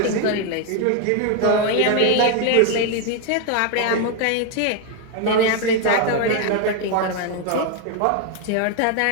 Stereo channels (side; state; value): both; different; correlation 0.01